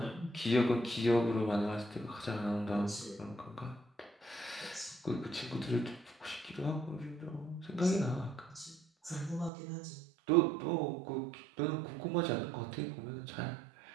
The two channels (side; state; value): left; drops out; at 9.5 s